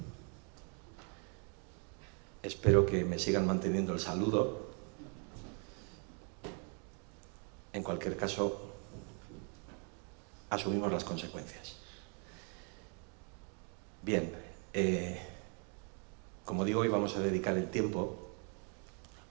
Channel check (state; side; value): quieter; left; 39.0 dB